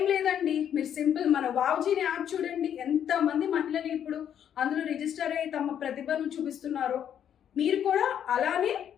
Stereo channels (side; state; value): right; quieter; 9.4 dB